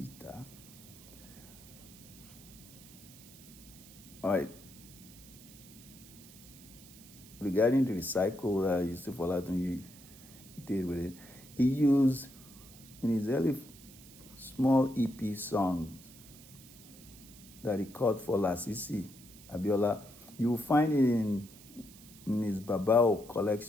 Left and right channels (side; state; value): right; noise; hiss, 20 dB below the sound